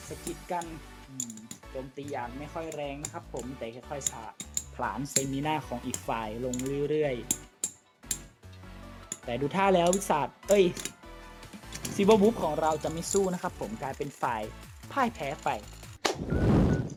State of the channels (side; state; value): both; identical; correlation 1.00